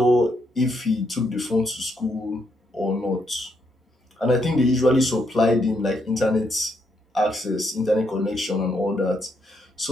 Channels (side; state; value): both; normal; correlation 0.76